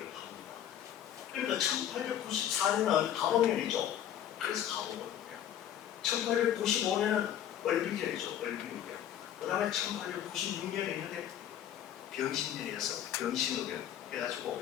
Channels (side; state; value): right; quieter; 10.6 dB